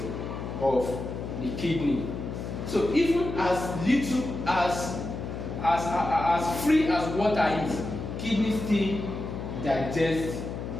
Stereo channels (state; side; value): noise; left; hum, 6 dB below the sound